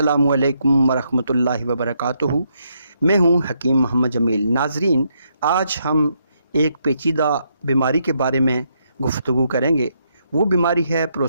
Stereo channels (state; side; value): inverted; both; correlation -0.77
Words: अलैकुम वरहमतुल्लाहि वबरकातुहू। मैं हूँ हकीम मोहम्मद जमील। नाज़रीन, आज हम एक पेचीदा बीमारी के बारे में गुफ्तगू करेंगे। वो बीमारी है